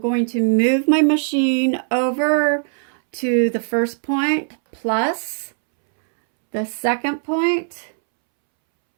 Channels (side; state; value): left; silent; 66 dB below the other